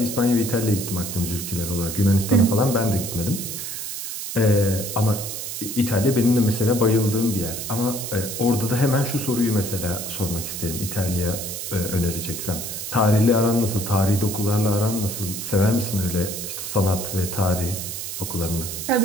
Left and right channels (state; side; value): noise; right; hiss, 6 dB below the sound